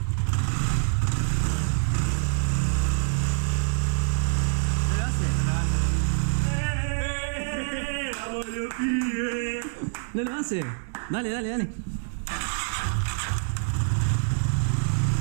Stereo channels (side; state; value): left; silent; 61 dB below the other